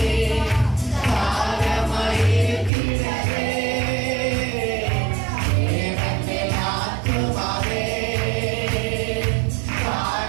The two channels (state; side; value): drops out; left; at 2.7 s